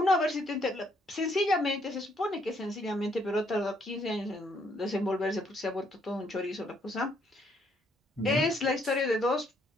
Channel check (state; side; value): normal; both; correlation 0.70